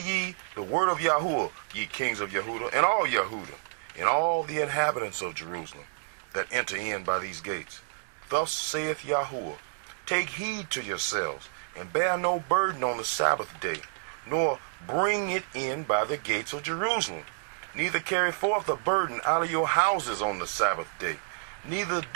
the word of Yahuwah, ye kings of Yahudah, and all Yahudah, and all the inhabitants of Jerusalem, that enter in by these gates. Thus saith Yahuwah, take heed to yourselves, and bear no burden on the Sabbath day, nor bring it in by the gates of Jerusalem. Neither carry forth a burden out of your houses on the Sabbath day. Neither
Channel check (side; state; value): left; silent; digital silence